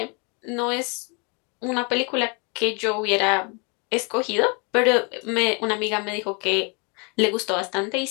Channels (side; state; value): right; quieter; 32.6 dB